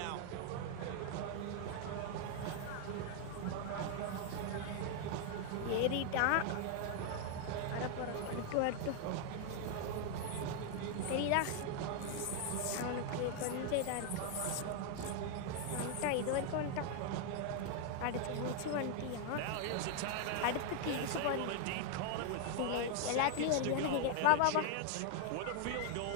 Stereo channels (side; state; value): both; different; correlation 0.00